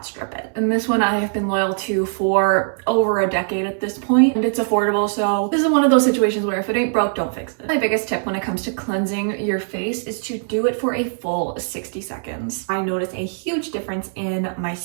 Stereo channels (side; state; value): left; silent; digital silence